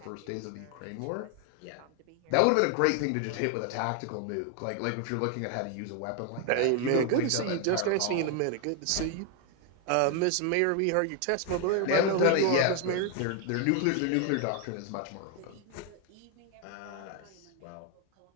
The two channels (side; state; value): both; different; correlation 0.01